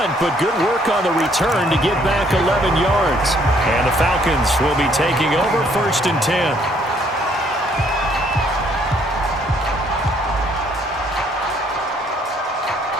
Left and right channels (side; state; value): both; normal; correlation 0.65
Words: but good work on the return to get back 11 yards. And the Falcons will be taking over 1st and 10.